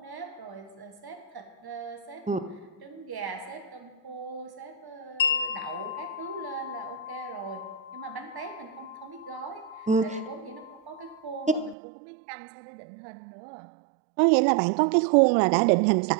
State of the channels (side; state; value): left; drops out; at 11.8 s